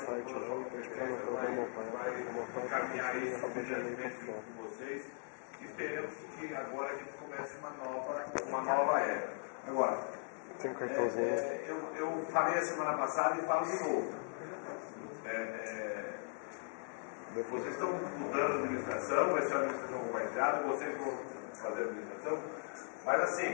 com toda a sua competência, vai encaminhar isso obedientemente junto com vocês. E esperamos que agora a gente comece uma nova era. Agora, eu falei a semana passada e falo de novo. Vocês estão mudando a administração, vai ser uma administração compartilhada, vocês vão fazer a administração, mas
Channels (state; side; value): silent; right; 52 dB below the other